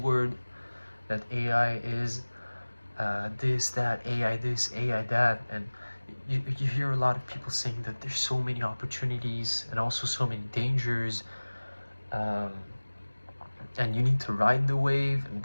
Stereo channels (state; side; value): inverted; both; correlation -1.00